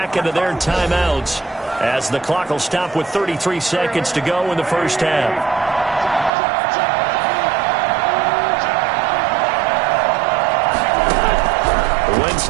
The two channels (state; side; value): drops out; left; at 6.3 s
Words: of their timeouts as the clock will stop with 33 seconds to go in the 1st half. Wentz